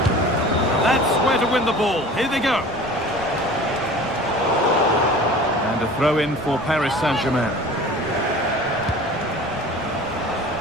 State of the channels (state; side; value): noise; right; rumble, 23 dB below the sound